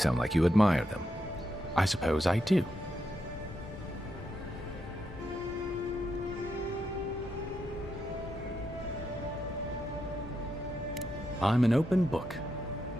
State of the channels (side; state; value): both; normal; correlation 0.83